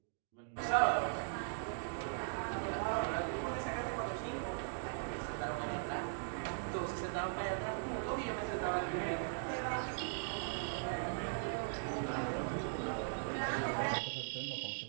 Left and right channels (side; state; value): left; silent; digital silence